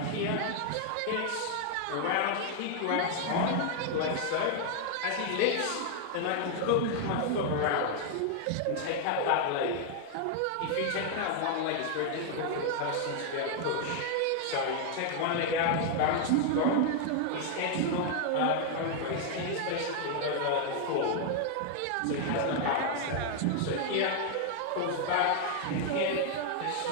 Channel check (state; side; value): different; both; correlation 0.00